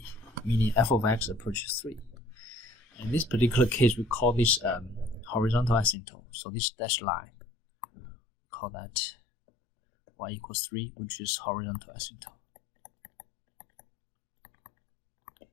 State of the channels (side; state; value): right; drops out; at 6.0 s